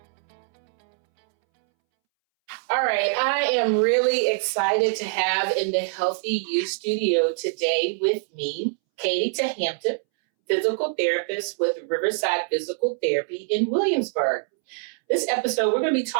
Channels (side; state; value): left; silent; 62 dB below the other